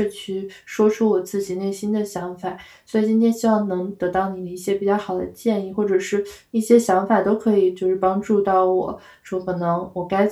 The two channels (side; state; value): both; identical; correlation 1.00